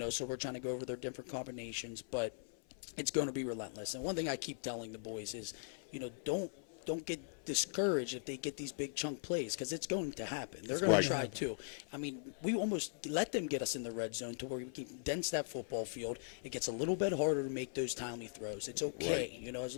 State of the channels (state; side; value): silent; right; 51 dB below the other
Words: So we're trying to go over their different combinations, but it's going to be relentless. And one thing I keep telling the boys is, don't get discouraged if they get these big chunk plays, because it's going to happen. They're going to try too. I mean, we almost let them get us in the red zone to where we can condense that football field. It gets a little bit harder to make those timely throws. It's okay, and